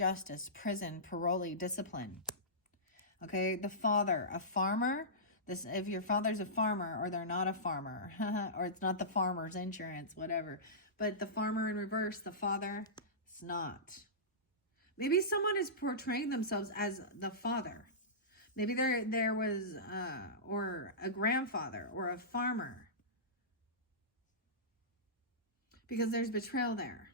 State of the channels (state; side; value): normal; both; correlation -0.20